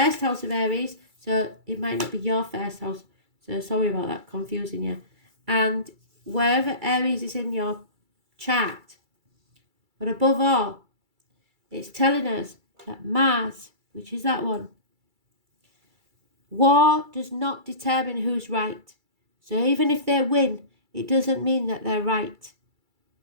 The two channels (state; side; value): late; left; 2.3 ms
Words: house of Aries. So it might not be your first house. So sorry about that, confusing you. And wherever Aries is in your chart. But above all, it's telling us that Mars, which is that one, war does not determine who's right. So even if they win, it doesn't mean that they're right.